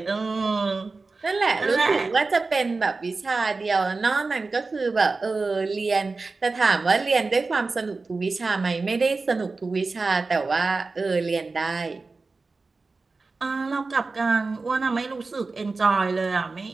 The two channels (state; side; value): quieter; left; 3.9 dB